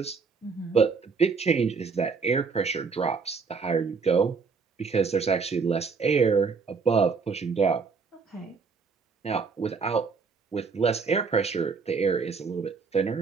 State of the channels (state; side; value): quieter; left; 5.1 dB